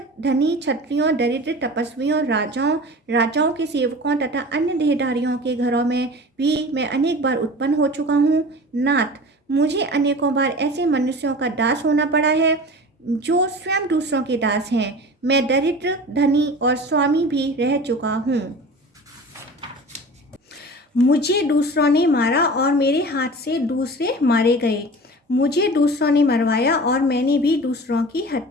धनी क्षत्रियों दरिद्र तपस्वियों राजाओं के सेवकों तथा अन्य देहधारियों के घरों में भी मैं अनेक बार उत्पन्न हो चुका हूँ। नाथ मुझे अनेकों बार ऐसे मनुष्यों का दास होना पड़ा है जो स्वयं दूसरों के दास हैं। मैं दरिद्र धनी और स्वामी भी रह चुका हूँ। मुझे दूसरों ने मारा और मेरे हाथ से दूसरे मारे गए। मुझे दूसरों ने मरवाया और मैंने भी दूसरों की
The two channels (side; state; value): both; normal; correlation 0.37